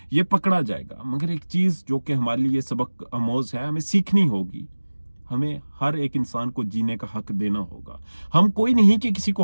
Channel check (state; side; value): inverted; both; correlation -1.00